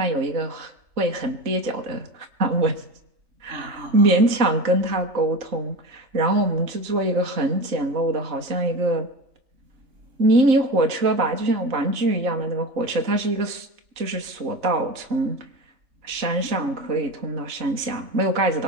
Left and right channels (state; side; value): late; left; 3.9 ms